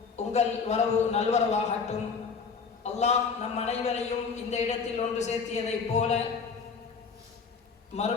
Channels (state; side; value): quieter; right; 5.4 dB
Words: உங்கள் வரவு நல்வரவாகட்டும். அல்லாஹ் நம் அனைவரையும் இந்த இடத்தில் ஒன்று சேர்த்தியதைப் போல